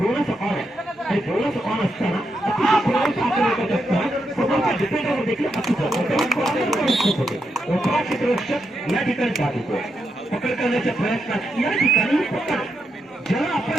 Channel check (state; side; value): normal; both; correlation 0.83